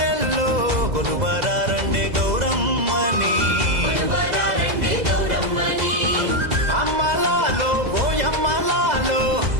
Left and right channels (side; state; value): left; late; 2.0 ms